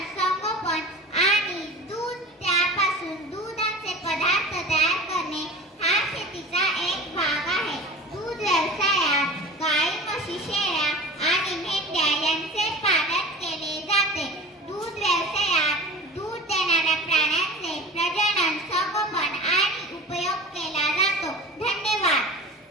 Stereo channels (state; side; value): normal; both; correlation 0.37